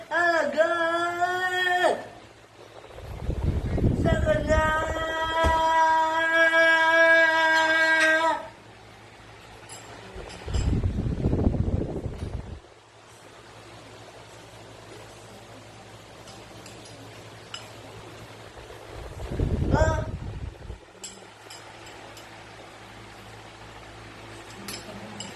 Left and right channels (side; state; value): both; identical; correlation 1.00